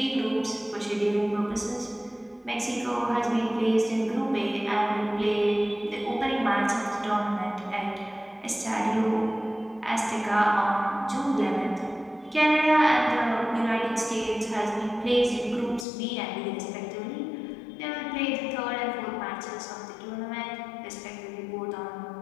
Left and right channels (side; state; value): right; drops out; at 15.9 s